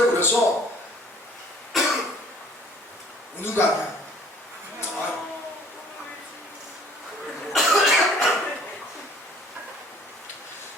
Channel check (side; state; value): both; normal; correlation 0.54